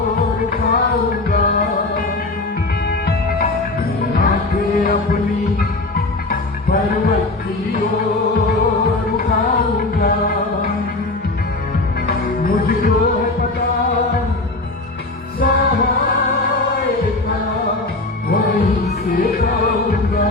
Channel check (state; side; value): quieter; right; 3.0 dB